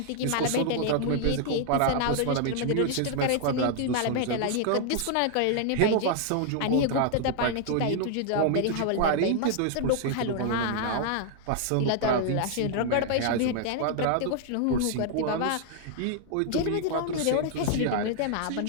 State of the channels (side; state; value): both; different; correlation 0.00